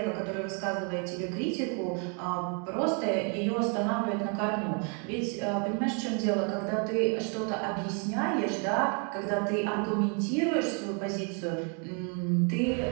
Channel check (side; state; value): left; quieter; 38.9 dB